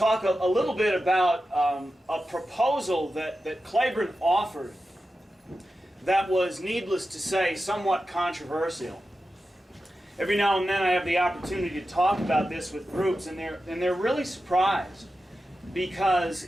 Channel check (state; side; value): normal; both; correlation 0.92